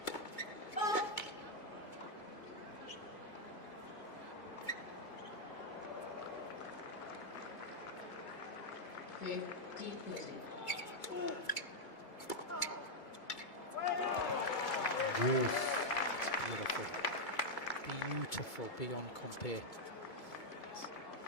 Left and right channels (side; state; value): right; late; 2.2 ms